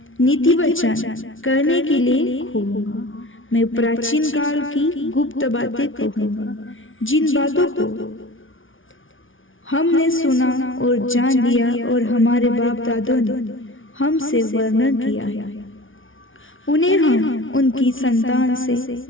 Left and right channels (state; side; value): late; right; 0.57 ms